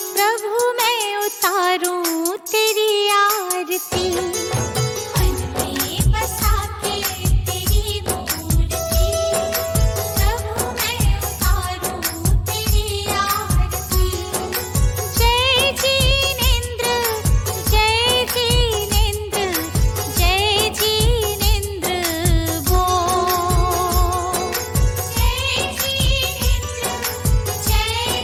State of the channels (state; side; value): identical; both; correlation 1.00